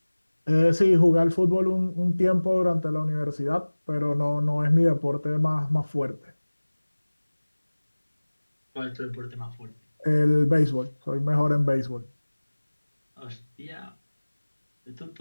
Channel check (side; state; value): both; inverted; correlation -1.00